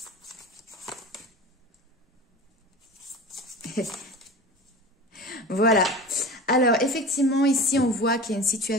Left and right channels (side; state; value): both; normal; correlation 0.33